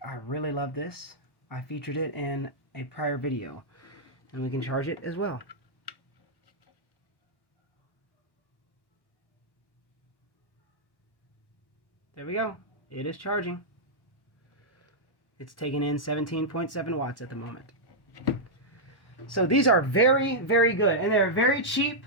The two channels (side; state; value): right; late; 1.1 ms